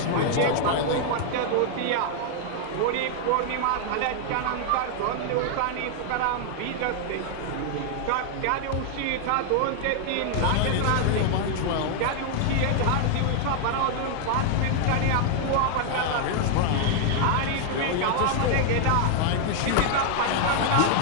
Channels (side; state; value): both; different; correlation 0.00